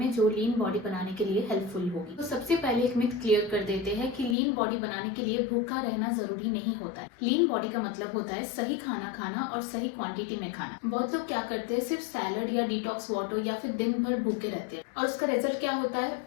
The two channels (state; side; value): drops out; right; at 4.4 s